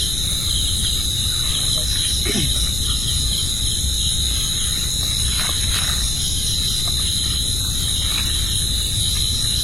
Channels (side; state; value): left; noise; rumble, 3 dB below the sound